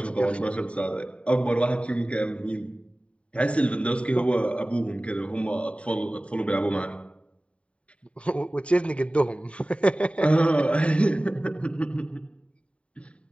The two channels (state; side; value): late; right; 0.062 ms